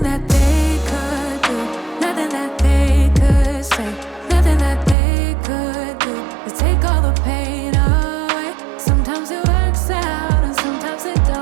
that they could do, nothing that they could say, nothing that they could do to take all the pain away. Sometimes it works out and sometimes it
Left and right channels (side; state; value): left; drops out; at 5.0 s